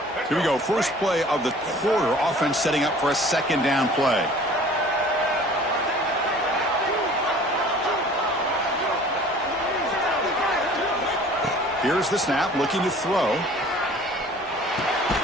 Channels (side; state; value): both; normal; correlation 0.48